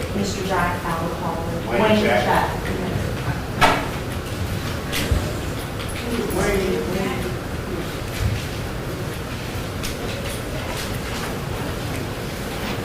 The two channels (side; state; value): both; identical; correlation 1.00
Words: Mr. Jack out of the hall? Wayne Jack.